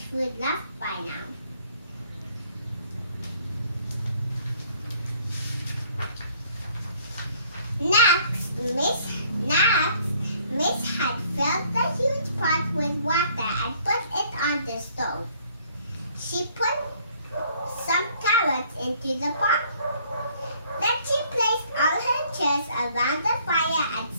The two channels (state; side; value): inverted; both; correlation -0.62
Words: food left by now. Next, Miss Hen filled the huge pot with water and put it on the stove. She put some carrots into the pot. Then she placed all her chairs around the fire and